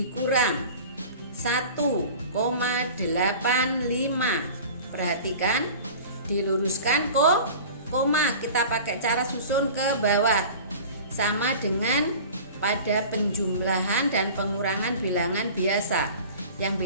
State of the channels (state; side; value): inverted; both; correlation -0.39